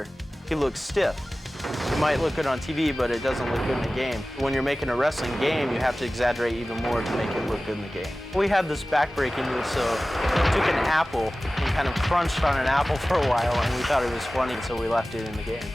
he looks stiff. It might look good on TV, but it doesn't look good in the game. When you're making a wrestling game, you have to exaggerate even more to make it look good in the game. We had this back-breaking move, so we took an apple and kind of crunched on an apple for a while, and we thought it was funny, so we left it in the game.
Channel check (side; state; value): both; normal; correlation 0.97